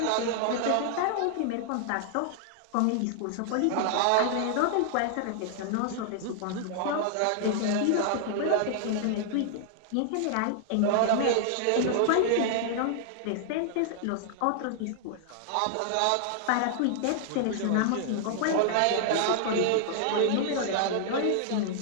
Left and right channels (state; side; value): different; both; correlation -0.01